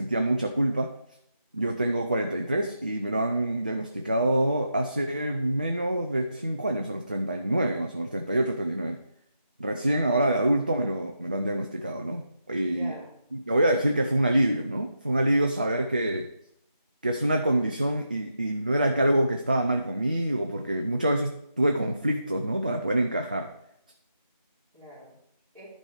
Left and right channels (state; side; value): inverted; both; correlation -0.84